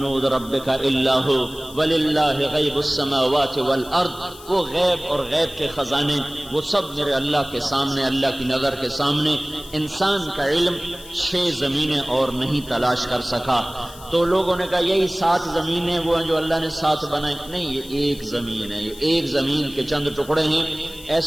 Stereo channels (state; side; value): noise; left; hiss, 19 dB below the sound